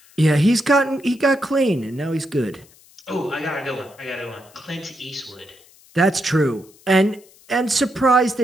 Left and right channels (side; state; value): left; noise; hiss, 27 dB below the sound